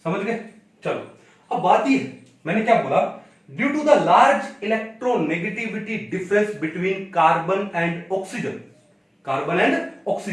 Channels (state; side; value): identical; both; correlation 1.00